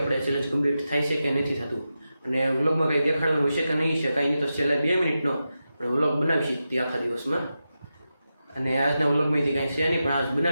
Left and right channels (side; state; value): both; inverted; correlation -0.90